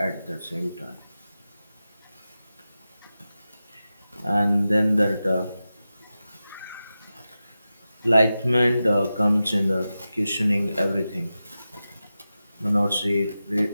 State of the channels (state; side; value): inverted; both; correlation -0.93